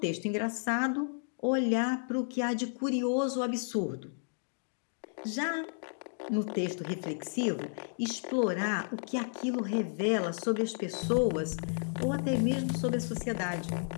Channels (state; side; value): silent; right; digital silence